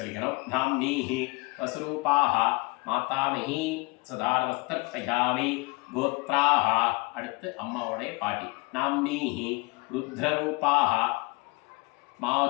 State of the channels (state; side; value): quieter; right; 26.6 dB